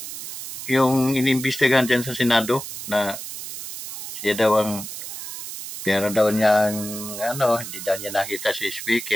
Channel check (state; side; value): noise; right; hiss, 9 dB below the sound